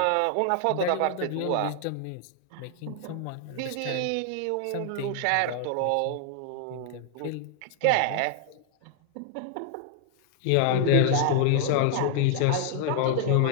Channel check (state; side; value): different; both; correlation 0.00